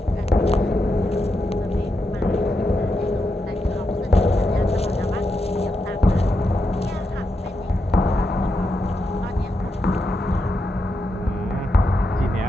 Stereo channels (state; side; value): normal; both; correlation 0.85